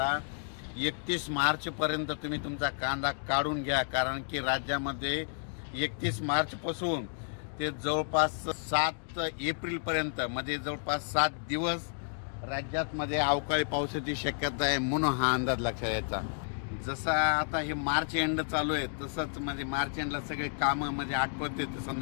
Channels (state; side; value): silent; right; digital silence